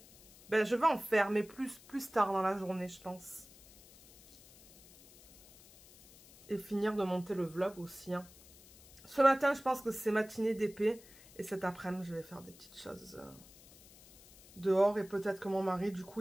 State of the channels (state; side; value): noise; left; hiss, 23 dB below the sound